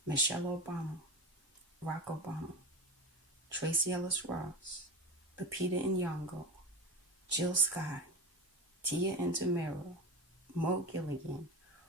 Michelle Obama, Barack Obama, Tracy Ellis Ross, Lupita Nyong'o, Jill Scott, Tia Intemero, Mo Gilligan,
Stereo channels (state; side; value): normal; both; correlation 0.26